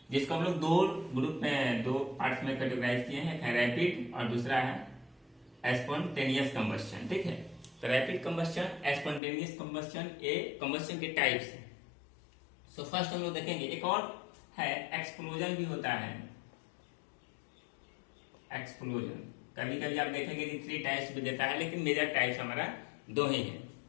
जिसको हम लोग दो ग्रुप में, दो पार्ट्स में कैटेगराइज किए हैं। एक है रैपिड और दूसरा है स्पॉन्टेनियस कंबस्शन। ठीक है, तो रैपिड कंबस्शन, स्पॉन्टेनियस कंबस्शन, ये कंबस्शन के टाइप्स हैं। सो फर्स्ट हम लोग देखेंगे, एक और है एक्सप्लोजन भी होता है। एक्सप्लोजन कभी कभी आप देखेंगे कि 3 टाइप्स भी देता है, लेकिन मेजर टाइप्स हमारा 2 ही है।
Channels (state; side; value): drops out; right; at 9.2 s